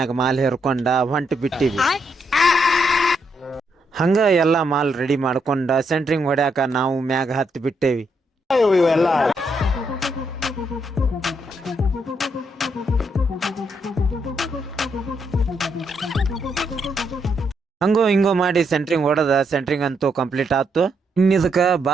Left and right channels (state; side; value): normal; both; correlation 0.77